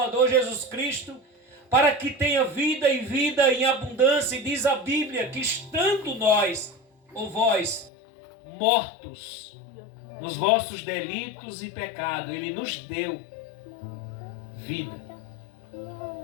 Jesus Cristo, para que tenha vida e vida em abundância. E diz a Bíblia que estando nós, ou vós, mortos nos vossos delitos e pecados, Ele nos deu vida.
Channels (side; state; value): right; drops out; at 7.9 s